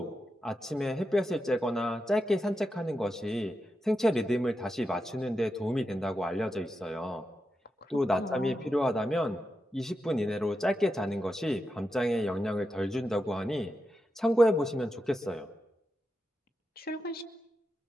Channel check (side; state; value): both; normal; correlation 0.88